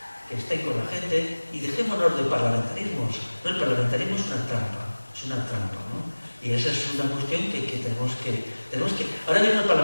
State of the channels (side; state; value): both; inverted; correlation -1.00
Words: que estén con la gente y dejémonos de parlamentarismos. No, el parlamentarismo es una trampa, ¿no? Y esa es una cuestión que tenemos que... Ahora mismo el